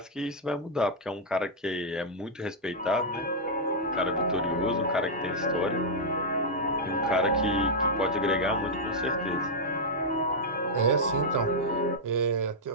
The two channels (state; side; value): normal; both; correlation -0.06